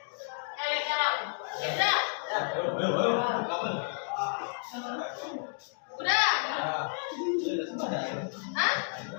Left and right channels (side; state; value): right; silent; digital silence